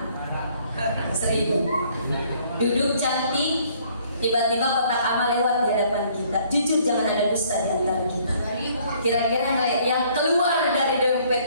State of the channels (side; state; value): both; inverted; correlation -0.62